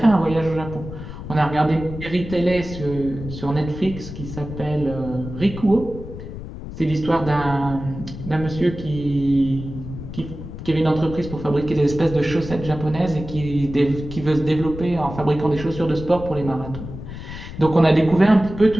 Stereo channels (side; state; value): left; noise; rumble, 11 dB below the sound